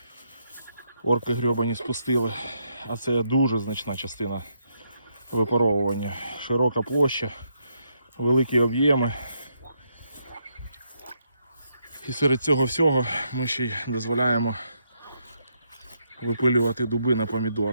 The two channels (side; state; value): both; inverted; correlation -0.77